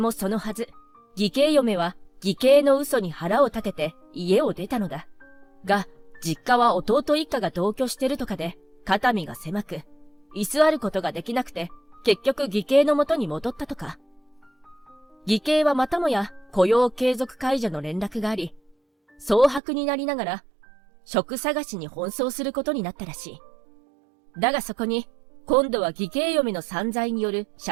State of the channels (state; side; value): drops out; left; at 19.6 s